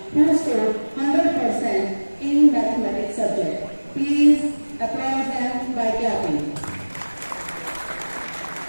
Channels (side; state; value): both; inverted; correlation -1.00